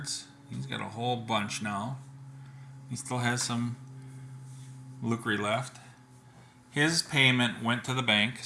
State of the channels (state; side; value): identical; both; correlation 1.00